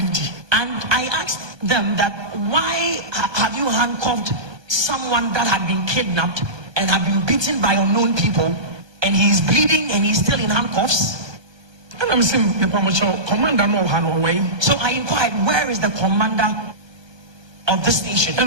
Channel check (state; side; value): late; left; 1.3 ms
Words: I asked them that, why have you handcuffed someone that had been kidnapped and had been beaten by unknown people, and he is bleeding and he's still in handcuffs? And I'm saying, commander no way. So I inquired, where is the commander of the station?